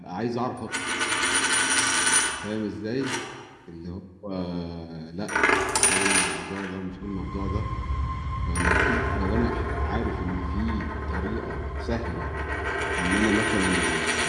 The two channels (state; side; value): identical; both; correlation 1.00